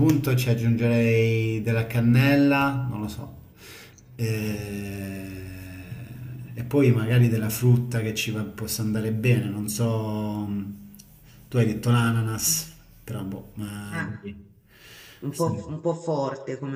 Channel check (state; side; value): identical; both; correlation 1.00